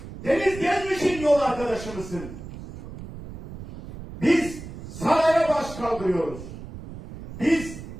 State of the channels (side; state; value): right; noise; rumble, 12 dB below the sound